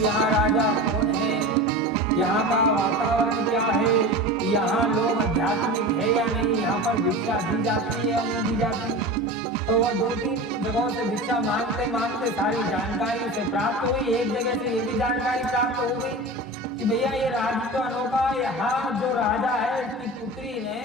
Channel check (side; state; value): both; normal; correlation 0.30